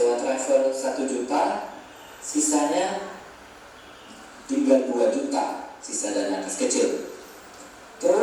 travel 1 juta, sisanya tinggal 2 juta. Sisa dana kas kecil.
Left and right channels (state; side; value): identical; both; correlation 1.00